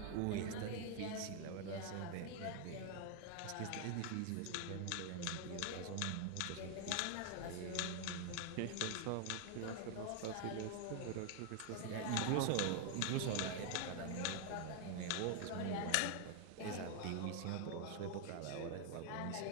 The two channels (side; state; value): both; different; correlation 0.00